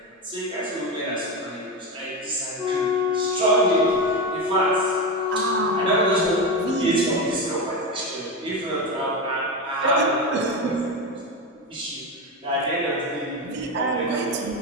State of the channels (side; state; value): both; normal; correlation 0.17